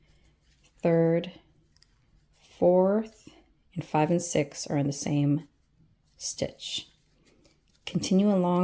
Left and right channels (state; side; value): identical; both; correlation 1.00